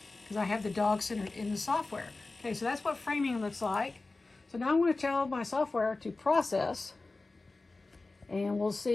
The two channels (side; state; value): right; quieter; 3.4 dB